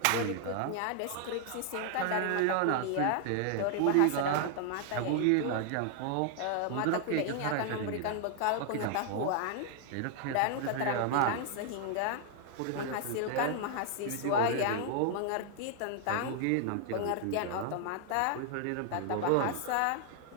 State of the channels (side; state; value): both; different; correlation 0.00